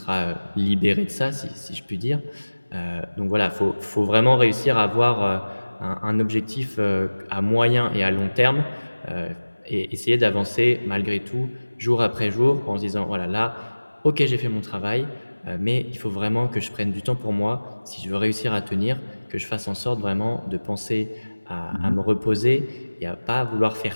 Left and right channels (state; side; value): inverted; both; correlation -1.00